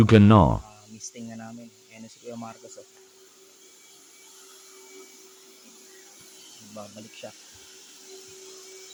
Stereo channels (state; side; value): identical; both; correlation 1.00